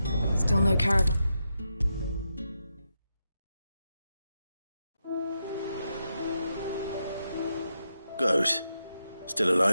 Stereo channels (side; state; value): both; inverted; correlation -0.85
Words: Still no caravan. Goat. Still